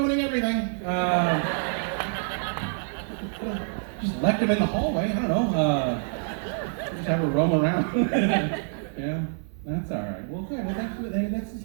everything. Just left them in the hallway. I don't know. Just have her roam around. Yeah, that's all right. Well, good. Well, this is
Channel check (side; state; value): left; silent; 61 dB below the other